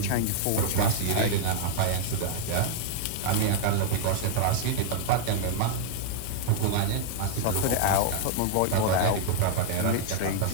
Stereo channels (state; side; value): different; both; correlation -0.01